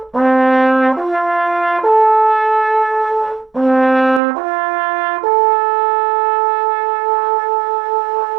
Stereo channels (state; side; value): drops out; left; at 4.2 s